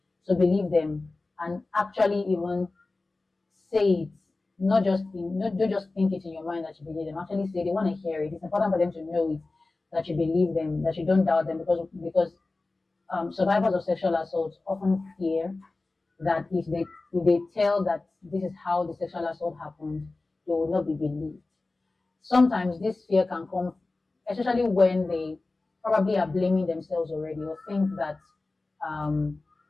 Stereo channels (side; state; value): right; quieter; 3.3 dB